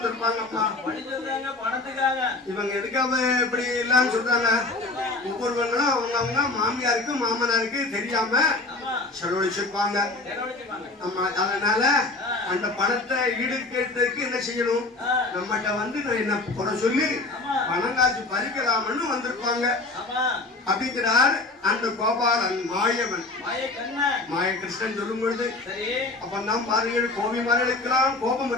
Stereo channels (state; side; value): quieter; right; 3.2 dB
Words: இவங்க எதுக்காக இப்படி இல்லன்னு சொல்றாங்க? ஒவ்வொருவங்களும் அவங்க மாமியாருக்கு மாமனாருக்கு தெரியாம செலவழிச்சிருப்பாங்க. ஆமா, அதனால அந்த பணத்தை ஈடுகட்டுறதுக்கு என்ன செய்யணும்? நம்மகிட்ட வந்து நான் என்ன குறை சொல்லி பணம் காசு பறிக்கலாம்னு வந்திருப்பாங்க அப்படிங்கிறார் அந்த கோபாலன் மாயவன். மாயகிருஷ்ணன் சொல்லும் பொழுது அப்பதான் பாருங்கள், கோபி மார்களுக்கெல்லாம் கோபம்